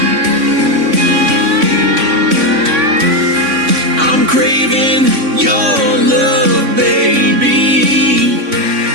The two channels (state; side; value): late; left; 3.6 ms